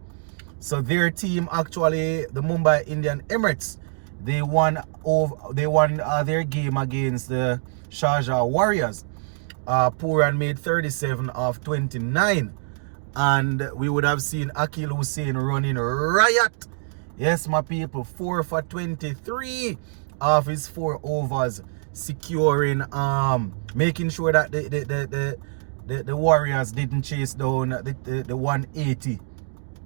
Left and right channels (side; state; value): left; silent; digital silence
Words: So their team actually, the Mumbai Indian Emirates, they won their game against the Sharjah Warriors. Pooran made 37 of 29, and we would have seen Akil Hussain running riot. Yes, my people, 4 for 23 of his 4 overs, securing, making sure that the Warriors didn't chase down the 180